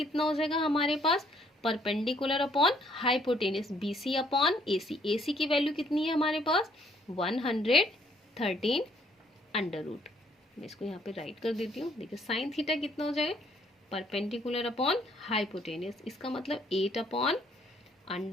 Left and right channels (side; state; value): both; normal; correlation 0.66